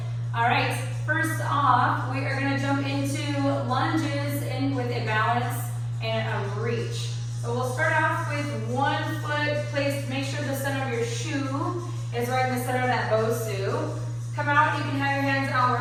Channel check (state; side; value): identical; both; correlation 1.00